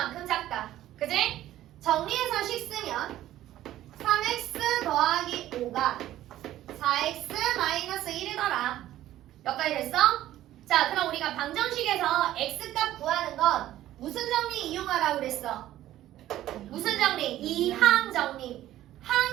작다. 그지? 정리해서 식 쓰면 3x 더하기 5가 4x 마이너스 1이더라. 여기까지 됐어? 자, 그럼 우리가 방정식에서 x값 구하는 건 무슨 정리 이용하라고 그랬어? 무슨 정리? 이항 정리.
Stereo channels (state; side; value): quieter; left; 13.7 dB